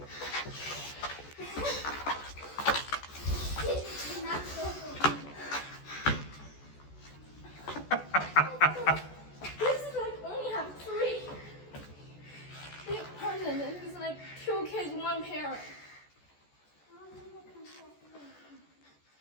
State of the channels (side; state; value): right; late; 14 ms